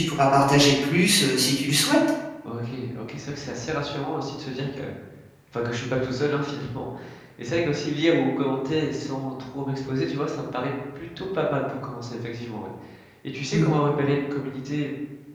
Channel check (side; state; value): both; identical; correlation 1.00